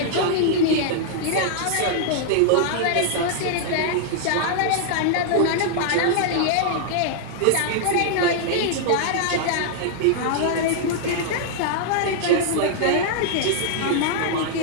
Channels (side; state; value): both; different; correlation -0.01